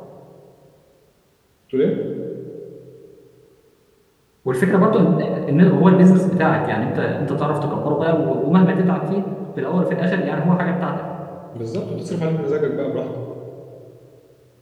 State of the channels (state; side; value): identical; both; correlation 1.00